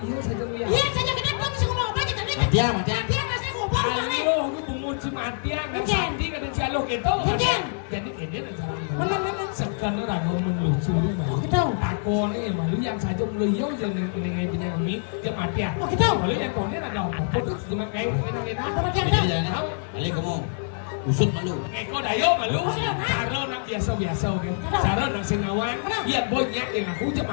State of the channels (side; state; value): right; silent; 61 dB below the other